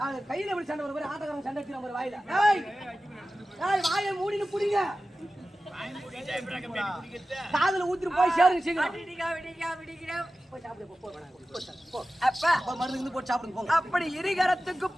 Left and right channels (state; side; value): normal; both; correlation 0.95